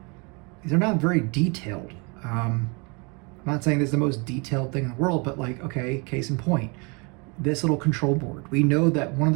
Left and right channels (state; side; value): quieter; left; 31.1 dB